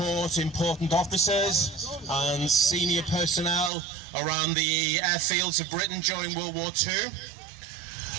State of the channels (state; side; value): drops out; left; at 3.7 s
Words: important officers and senior personnel around the airfields of Britain during World War II.